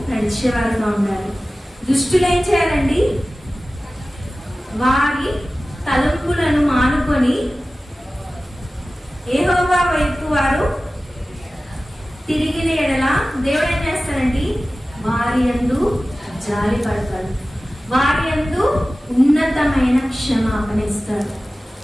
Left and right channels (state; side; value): normal; both; correlation 0.96